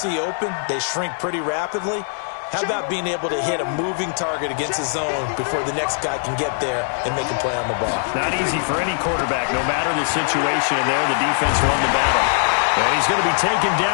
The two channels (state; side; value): silent; right; digital silence